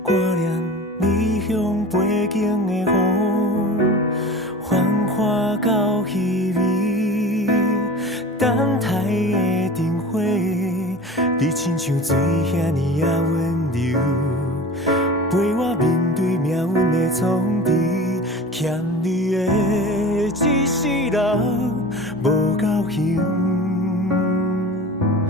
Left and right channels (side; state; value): both; normal; correlation 0.36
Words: 挂念你乡背景的风，繁华到稀微。等待的灯火，你亲像水遐尼啊温柔，陪我面对命运的冲击。欠你的一世人无够幸，